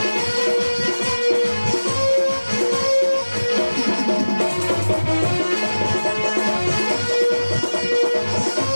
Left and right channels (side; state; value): both; inverted; correlation -1.00